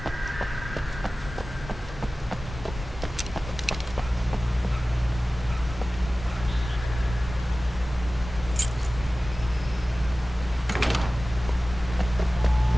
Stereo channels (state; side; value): normal; both; correlation 0.97